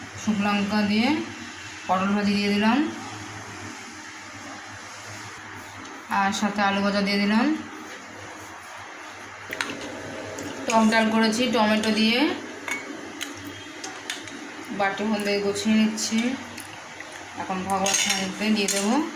শুকনো লঙ্কা দিয়ে পটল ভাজি দিয়ে দিলাম, আর সাথে আলু ভাজা দিয়ে দিলাম। টক ডাল করেছি টমেটো দিয়ে, বাটি মধ্যে গুছিয়ে নিচ্ছি। এখন ভগবান মধ্যে দিয়ে দেবো।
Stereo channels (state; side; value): identical; both; correlation 1.00